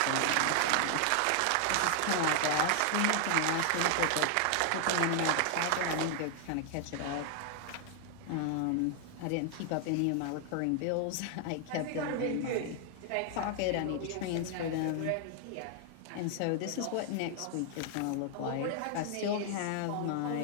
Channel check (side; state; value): both; different; correlation 0.00